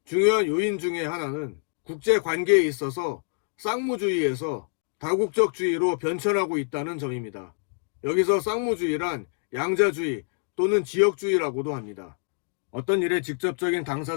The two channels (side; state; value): right; silent; digital silence